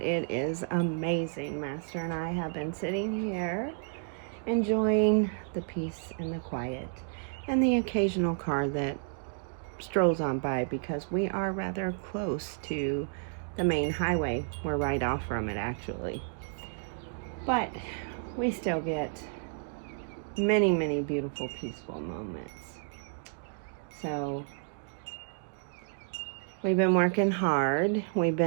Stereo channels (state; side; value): silent; left; digital silence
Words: is amazing. Master and I have been sitting here enjoying the peace and the quiet and the occasional car that strolls on by because we are rather close to the main highway. We're right off from it, actually. But we still get many, many beautiful, peaceful moments. So we've been working hard. We've